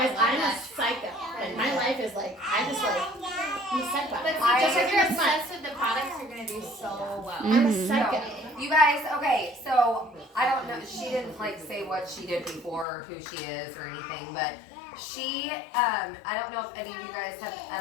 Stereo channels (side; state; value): right; drops out; at 12.9 s